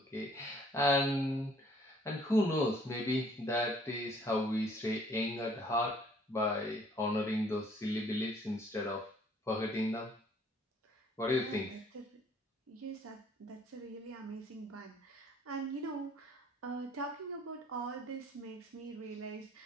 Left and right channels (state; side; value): normal; both; correlation 0.59